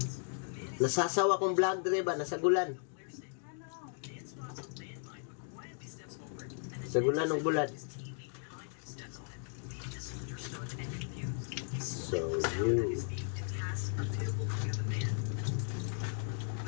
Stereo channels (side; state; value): right; silent; 54 dB below the other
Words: Nasasawa kong vlog driver, nasagulan. Sagulan ng bulat. So you.